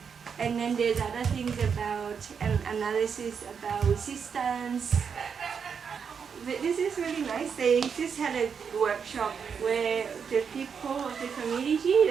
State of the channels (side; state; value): left; quieter; 6.6 dB